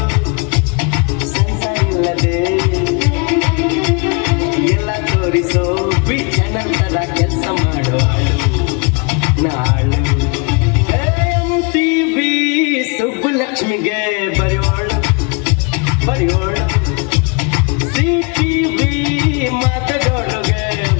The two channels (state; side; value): quieter; right; 32.3 dB